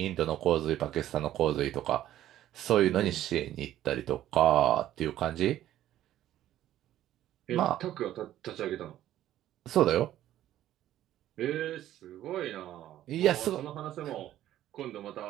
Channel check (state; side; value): quieter; left; 12.9 dB